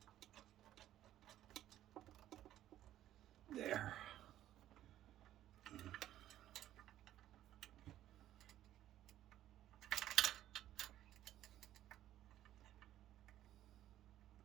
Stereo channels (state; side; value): quieter; left; 12.7 dB